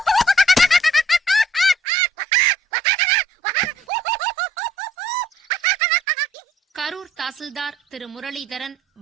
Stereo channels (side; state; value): both; normal; correlation 0.60